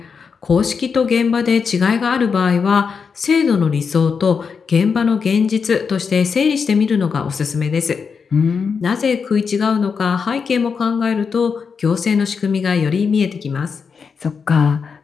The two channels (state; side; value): quieter; right; 5.8 dB